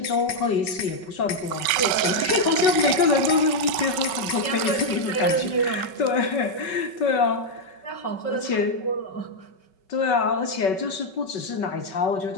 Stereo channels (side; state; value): right; late; 5.3 ms